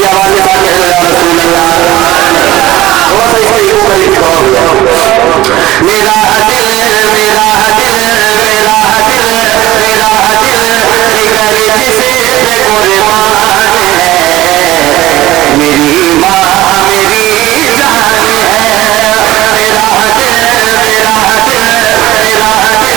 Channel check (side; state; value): left; quieter; 16.4 dB